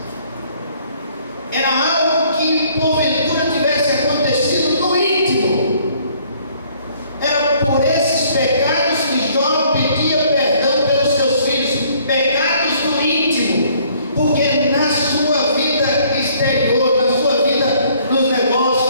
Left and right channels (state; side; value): inverted; both; correlation -0.61